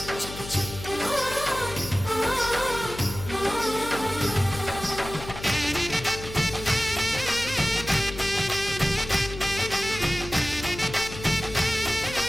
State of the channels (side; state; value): left; noise; hum, 11 dB below the sound